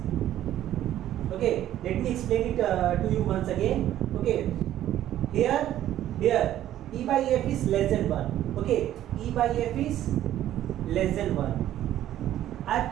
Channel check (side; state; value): left; quieter; 12.4 dB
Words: Okay, let me explain it to you once again. Okay, here e by f is less than 1. Okay, e by f is less than 1. I have